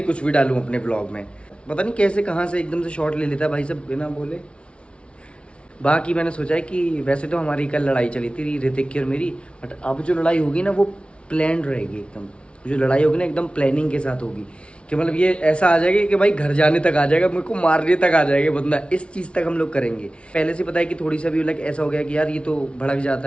कुछ भी डालूँ अपने व्लॉग में। पता नहीं कैसे कहाँ से एकदम से शॉट ले लेता है भाई सब बिना बोले। बाकी मैंने सोचा है कि वैसे तो हमारी कल लड़ाई चली थी ऋतिक की और मेरी, बट अब जो लड़ाई होगी ना वो प्लान रहेगी एकदम। जो लड़ाई होगी ना एकदम प्लानिंग के साथ होगी कि मतलब ये ऐसा आ जाएगा कि भाई घर जाने तक आ जाएगा, मेरे को मारने तक आ जाएगा बंदा। इस चीज़ तक हम लोग करेंगे। पहले से पता है कि थोड़ी सा भी लाइक ऐसा हो गया कि यार ये तो भड़क जाता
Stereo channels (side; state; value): right; late; 0.059 ms